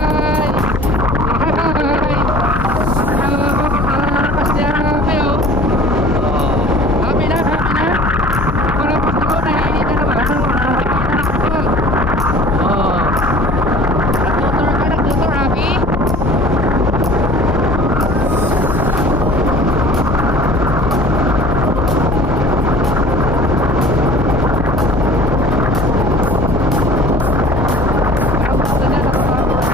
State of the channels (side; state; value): both; normal; correlation 0.46